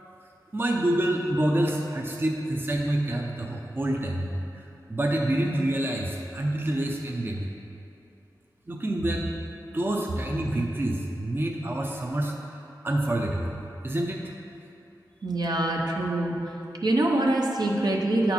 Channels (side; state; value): both; normal; correlation 0.88